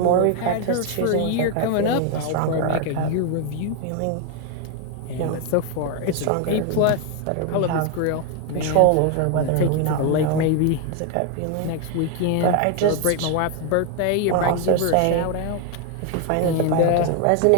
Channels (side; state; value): both; different; correlation 0.01